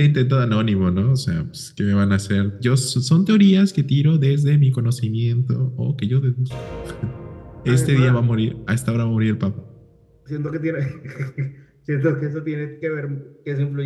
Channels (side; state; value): both; identical; correlation 1.00